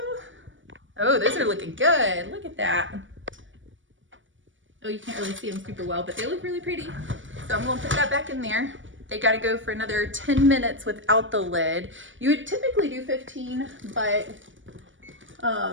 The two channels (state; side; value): late; left; 0.56 ms